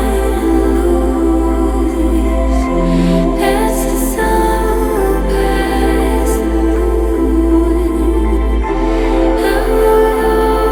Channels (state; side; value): identical; both; correlation 1.00